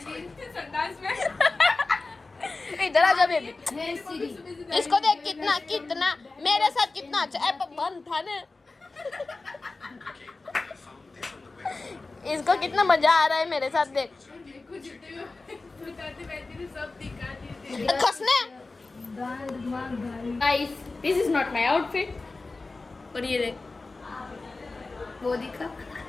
संडास में। इधर आ जा बेबी। Hey Siri. इसको देख कितना मेरे साथ कितना अच्छा ऐप बंद था ना। इसको कितना मजा आ रहा है मेरे साथ देख। देखो जितने भी बताते बैठे थे सब दिखा दिए। खसने। Guys this is not my outfit. और ये देख वो दिखा।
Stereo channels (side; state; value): right; quieter; 3.5 dB